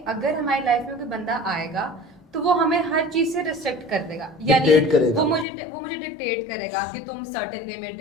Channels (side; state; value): right; drops out; at 5.5 s